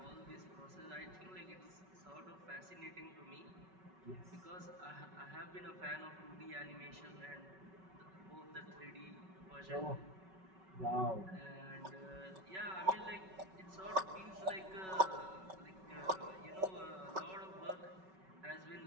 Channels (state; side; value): late; left; 5.3 ms